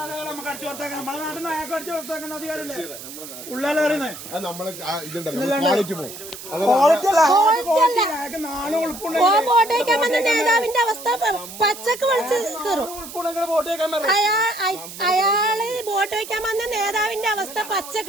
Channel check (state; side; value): noise; right; hiss, 13 dB below the sound